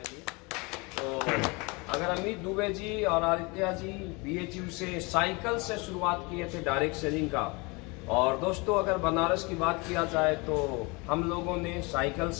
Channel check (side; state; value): right; quieter; 27.5 dB